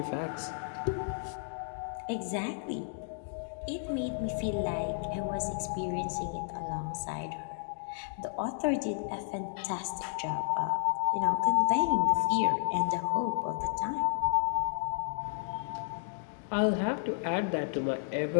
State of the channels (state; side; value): silent; right; digital silence